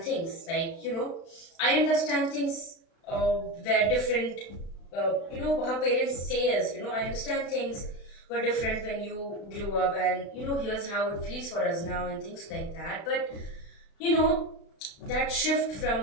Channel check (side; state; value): right; late; 36 ms